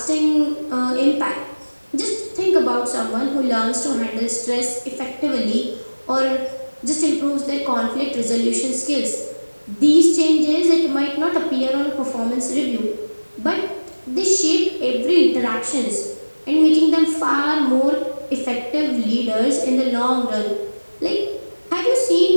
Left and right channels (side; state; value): both; inverted; correlation -1.00